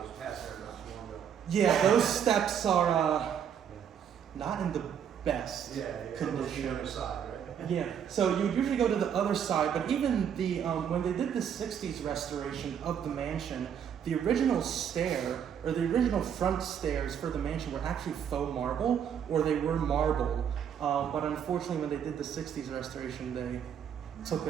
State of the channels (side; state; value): left; quieter; 8.4 dB